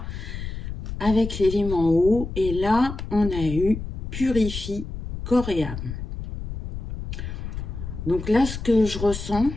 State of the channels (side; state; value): left; noise; rumble, 7 dB below the sound